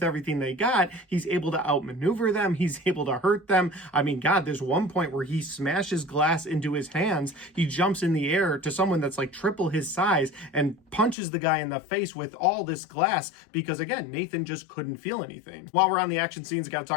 everything they got, he's able to outmaneuver them, he's able to hurt them. I mean, God, there's one point where he smashes glass into his hands, he jumps in the air to someone that's like triple his size and punches the guy in the face with all this glass, because again, Nathan just couldn't feel anything. While we're on the action scenes, I gotta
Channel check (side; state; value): right; drops out; at 11.2 s